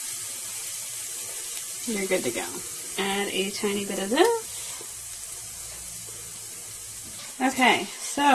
you're good to go. Add a tiny bit of this. Okay,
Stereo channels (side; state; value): both; identical; correlation 1.00